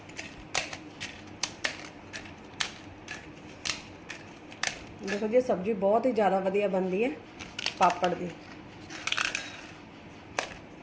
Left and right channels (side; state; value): both; identical; correlation 1.00